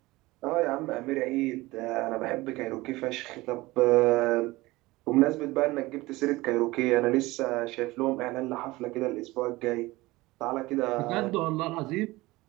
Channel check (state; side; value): quieter; left; 20.2 dB